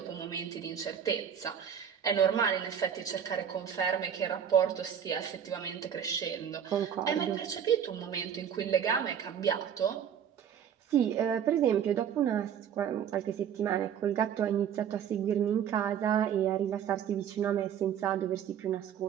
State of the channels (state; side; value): quieter; left; 8.6 dB